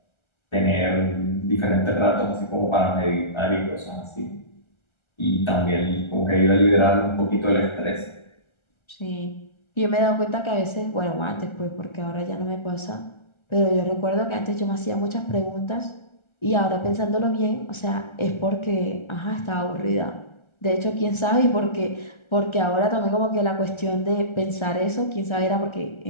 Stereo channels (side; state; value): right; late; 1.3 ms